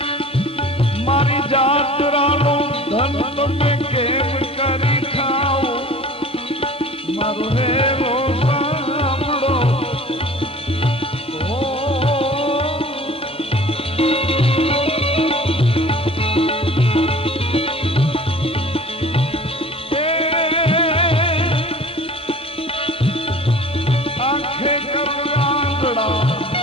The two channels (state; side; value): normal; both; correlation 0.45